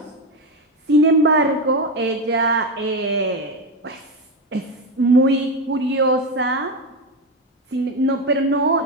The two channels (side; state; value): both; normal; correlation 0.14